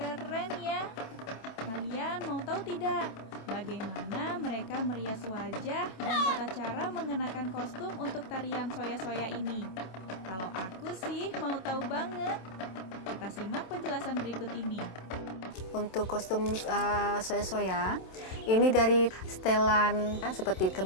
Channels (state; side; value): late; right; 27 ms